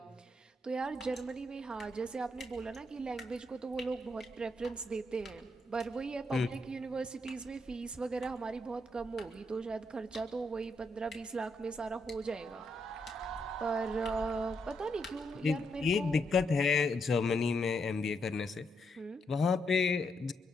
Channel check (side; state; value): both; normal; correlation 0.79